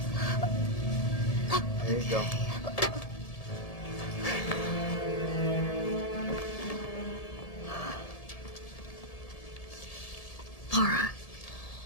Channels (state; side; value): late; right; 1.7 ms